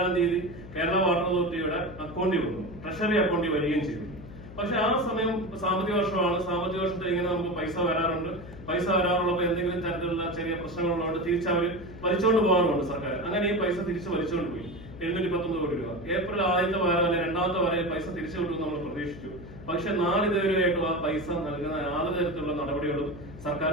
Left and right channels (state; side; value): noise; left; hum, 15 dB below the sound